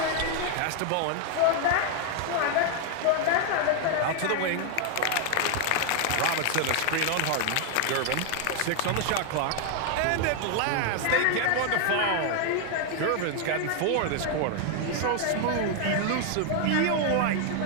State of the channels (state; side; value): different; both; correlation 0.00